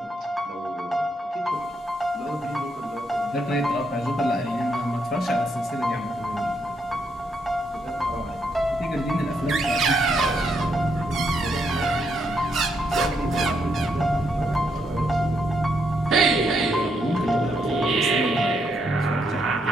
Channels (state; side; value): normal; both; correlation 0.77